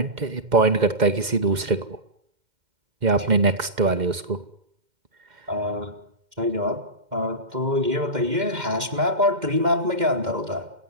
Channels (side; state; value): left; late; 2.1 ms